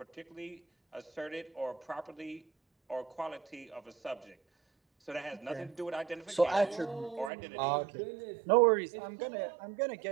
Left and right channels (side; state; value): left; drops out; at 7.3 s